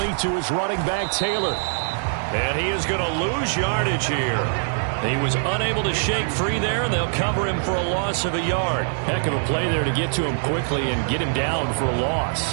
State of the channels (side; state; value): left; silent; digital silence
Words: to his running back, Taylor. And he is going to lose yardage here. He was unable to shake free there, and they'll cover him for a loss of a yard. Heck of a play there to get to him quickly and get him down for a